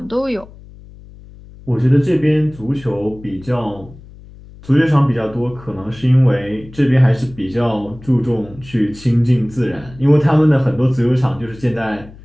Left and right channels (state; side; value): noise; left; hum, 20 dB below the sound